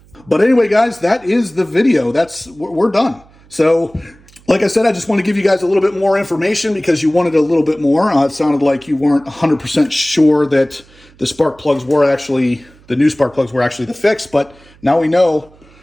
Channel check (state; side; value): noise; right; hum, 27 dB below the sound